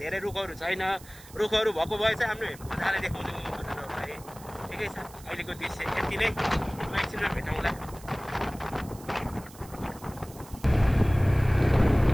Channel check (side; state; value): right; noise; hiss, 20 dB below the sound